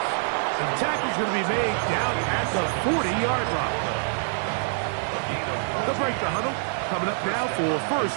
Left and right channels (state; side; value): silent; left; 61 dB below the other